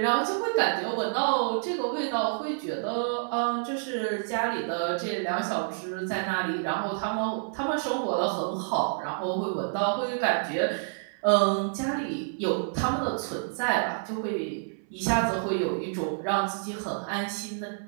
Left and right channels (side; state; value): left; silent; 59 dB below the other